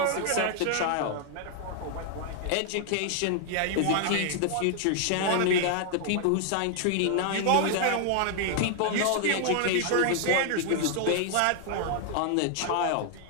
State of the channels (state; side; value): different; both; correlation 0.00